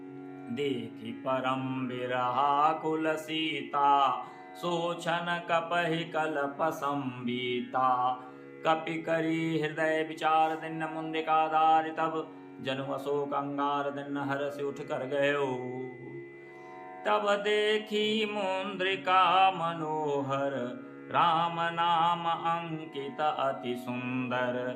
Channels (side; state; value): both; identical; correlation 1.00